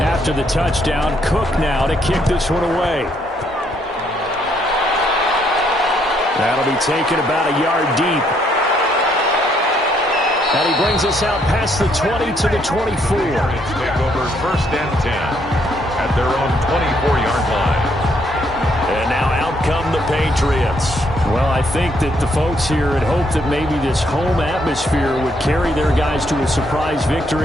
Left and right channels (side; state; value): both; normal; correlation 0.71